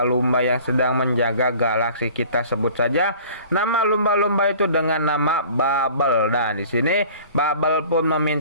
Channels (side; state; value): both; inverted; correlation -0.46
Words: yang sedang menjaga galaksi. Kita sebut saja nama lumba-lumba itu dengan nama Bubble. Dan di sini Bubble pun